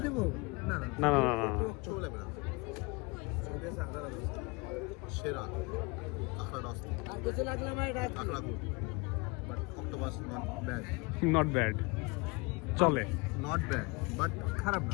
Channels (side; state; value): right; quieter; 27.1 dB